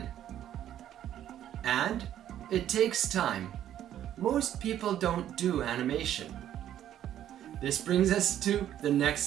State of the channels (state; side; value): quieter; left; 11.3 dB